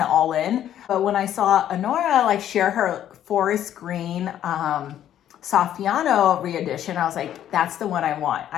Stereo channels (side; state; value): right; quieter; 11.0 dB